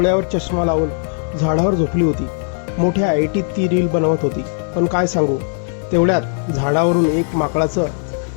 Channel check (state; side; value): silent; right; 67 dB below the other